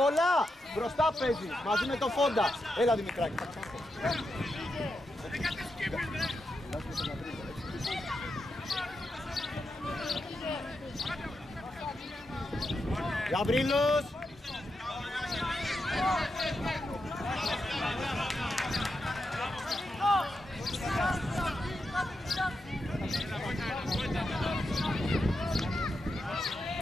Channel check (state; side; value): normal; both; correlation 0.86